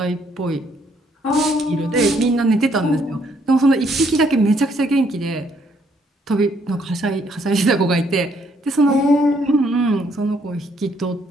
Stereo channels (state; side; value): normal; both; correlation 0.69